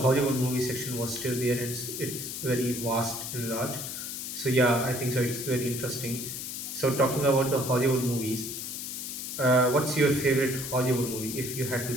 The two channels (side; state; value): left; noise; hiss, 6 dB below the sound